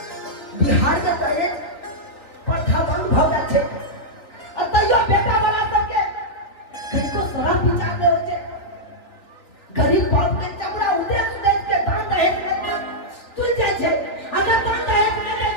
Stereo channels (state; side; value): late; right; 3.3 ms